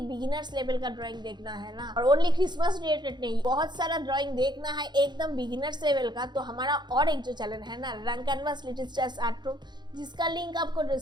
level का ड्राइंग देखना है ना, और ओनली क्रिसमस रिलेटेड नहीं, बहुत सारा ड्राइंग देखना है एकदम बिगिनर्स लेवल का, तो हमारा और एक जो चैनल है ना, रंग canvas little stars art room, जिसका लिंक आपको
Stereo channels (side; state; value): left; late; 0.21 ms